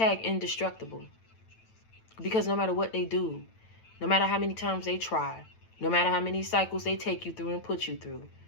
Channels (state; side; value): late; right; 9.0 ms